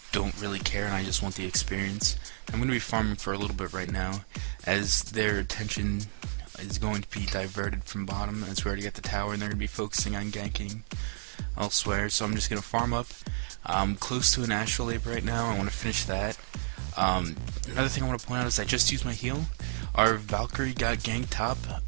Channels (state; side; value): silent; left; digital silence